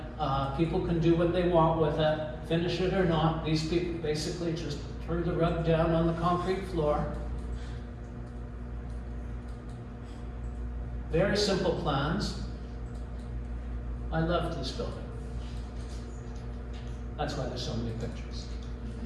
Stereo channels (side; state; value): both; identical; correlation 1.00